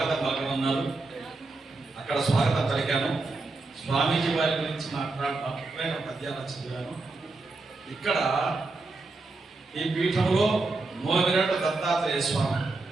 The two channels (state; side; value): quieter; left; 3.4 dB